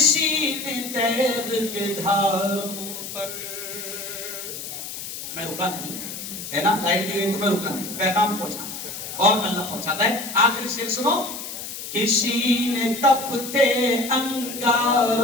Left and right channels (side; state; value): left; noise; hiss, 8 dB below the sound